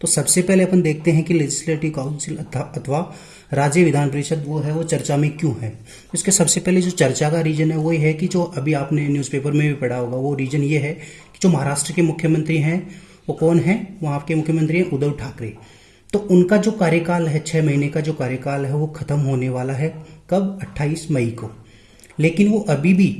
तो सबसे पहले अपन देखते हैं कि लेजिस्लेटिव काउंसिल अथवा राज्य विधान परिषद वो है वो चर्चा में क्यों है। इसके सबसे पहले जो चर्चा का रीजन है वो ये है कि जो अभी आपने न्यूज़पेपर में भी पढ़ा होगा, वो रीजन ये है कि जो महाराष्ट्र के मुख्यमंत्री हैं वो कौन है, वहाँ के मुख्यमंत्री हैं उद्धव ठाकरे। तो उनका जो कार्यकाल है, 6 महीने का जो कार्यकाल है वो खत्म होने वाला है कब, 28 मई को। लेकिन वो अभी भी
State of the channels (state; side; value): identical; both; correlation 1.00